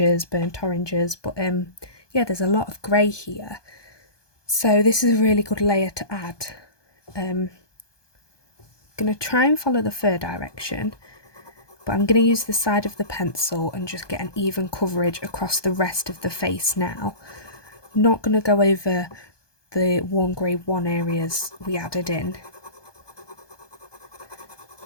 burnt oranges, but yeah, there's a lot of grey here, so this is a really good layer to add. I'm going to try and follow the fur direction, but I'm going to use the side of the pencil and just get an even coverage across the rest of the face now. Not going to go over the warm grey 1 areas we added in.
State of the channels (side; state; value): right; late; 1.2 ms